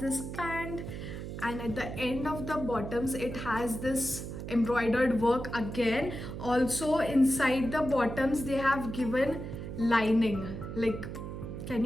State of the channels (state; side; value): noise; right; hum, 7 dB below the sound